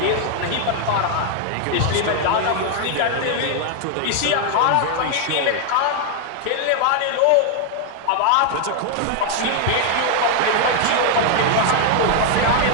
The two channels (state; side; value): different; both; correlation 0.00